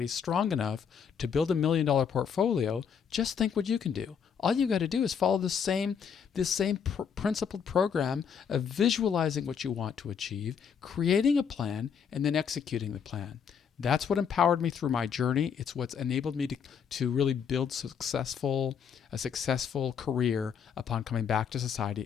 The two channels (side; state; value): right; quieter; 7.2 dB